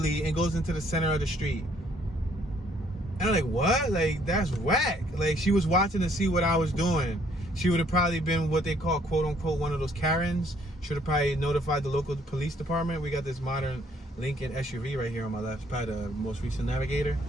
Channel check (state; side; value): normal; both; correlation 0.64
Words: and goes into the center of the street. And I'm like, what? Like, that's whack. Like, she was watching to see what I was doing. She would have probably been what they call, quote unquote, one of those Karens. Should have probably notified the local police department. We got this modern Lincoln SUV right here on my left. It's probably the most recent Navigator.